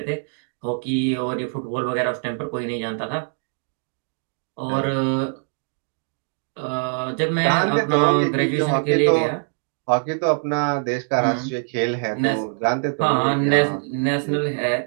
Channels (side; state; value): left; silent; 63 dB below the other